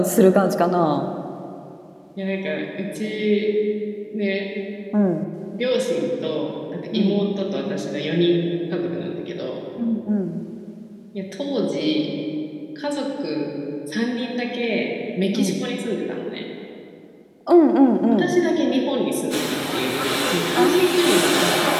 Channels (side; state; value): both; identical; correlation 1.00